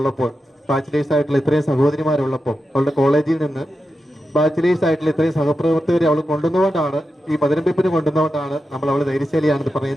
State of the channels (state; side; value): normal; both; correlation 0.90